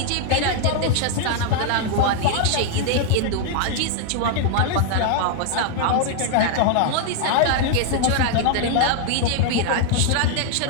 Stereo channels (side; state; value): both; different; correlation -0.01